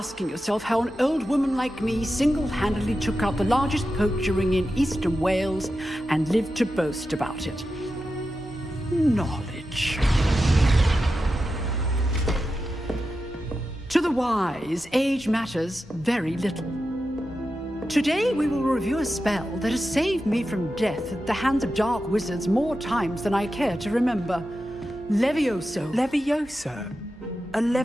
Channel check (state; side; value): normal; both; correlation 0.91